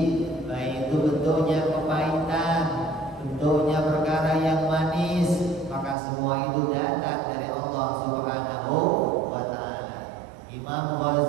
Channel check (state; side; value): drops out; left; at 6.0 s